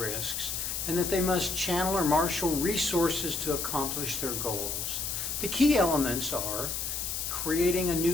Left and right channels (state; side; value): noise; left; hiss, 3 dB below the sound